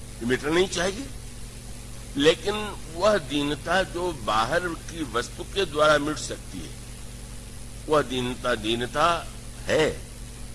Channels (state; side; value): identical; both; correlation 1.00